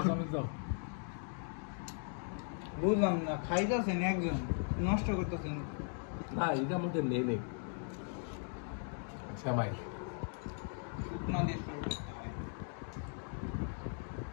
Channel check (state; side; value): silent; right; 52 dB below the other